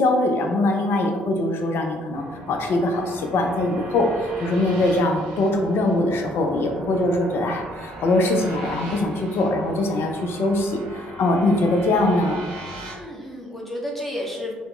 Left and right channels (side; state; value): both; normal; correlation 0.65